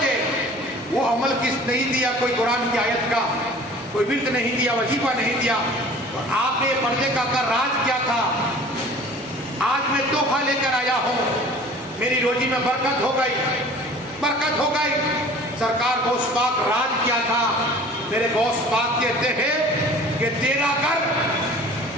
وہ عمل کس نہیں دیا، کوئی قرآن کی آیت کا کوئی ورد نہیں دیا، وظیفہ نہیں دیا، تو آپ نے پردے کا راز کیا تھا؟ آج میں تحفہ لے کر آیا ہوں، میری روزی میں برکت ہو گئی۔ سرکار غوث پاک راز کیا تھا؟ میرے غوث پاک کہتے ہیں کہ تیرا گھر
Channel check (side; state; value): both; normal; correlation 0.46